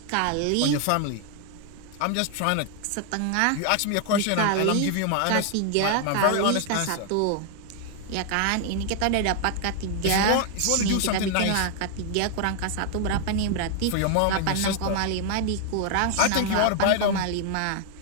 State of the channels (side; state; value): both; different; correlation 0.00